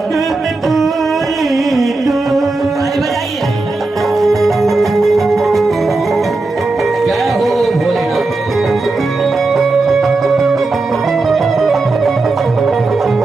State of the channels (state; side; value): quieter; left; 3.3 dB